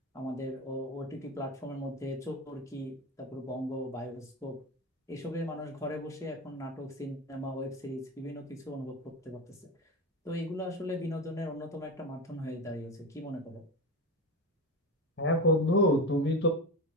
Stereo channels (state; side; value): normal; both; correlation 0.22